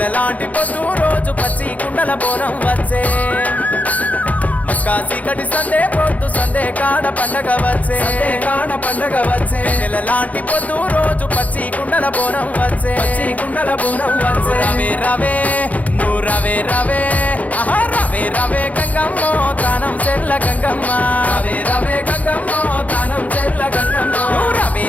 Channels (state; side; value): late; right; 0.073 ms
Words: లాంటి పొద్దు రోజు పచ్చి కుండల బోనం వచ్చే మస్కాసి కటి సందే పొద్దు సందే కాడ పండగ వచ్చే వెన్నెల లాంటి పొద్దు రోజు పచ్చి కుండల బోనం వచ్చే రవే రవే నువ్వు రవే రవే ఆహా రవే రవే గంగమ్మో తానం చెల్ల గంగమ్మ రవే గంగమ్మో తానం చెల్ల గంగమ్మ రవే